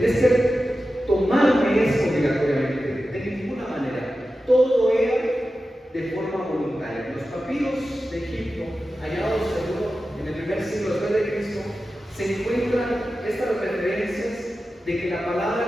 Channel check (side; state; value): both; normal; correlation 0.93